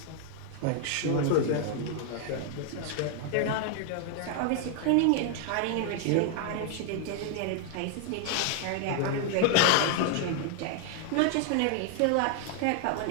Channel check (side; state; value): both; different; correlation 0.00